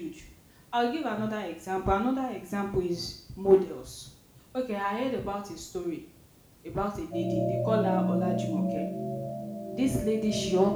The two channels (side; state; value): both; identical; correlation 1.00